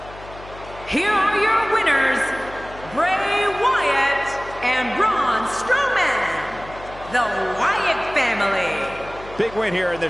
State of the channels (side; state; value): left; noise; hum, 17 dB below the sound